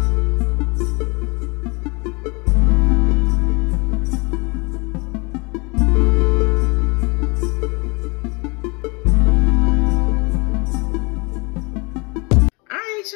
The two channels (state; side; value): quieter; right; 29.3 dB